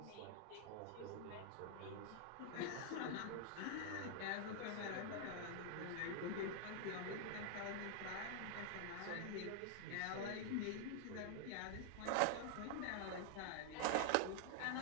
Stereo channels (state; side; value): different; both; correlation 0.00